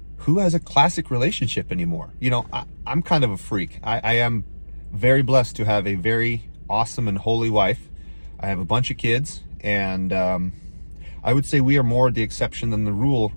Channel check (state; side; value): inverted; both; correlation -1.00